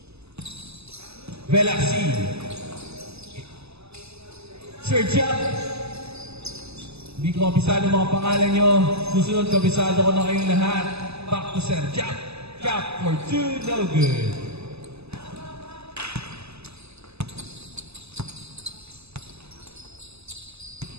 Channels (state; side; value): late; left; 0.79 ms